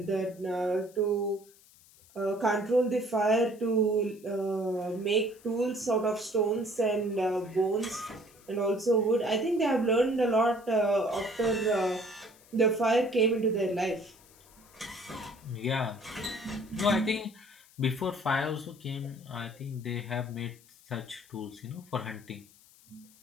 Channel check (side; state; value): left; noise; hiss, 26 dB below the sound